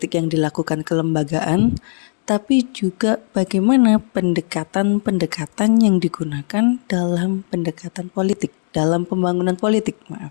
yang dilakukan kelembagaan, tapi juga bagaimana pendekatan-pendekatan yang digunakan dalam pendekatan politik, dalam pembangunan politik,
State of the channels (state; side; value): silent; right; 67 dB below the other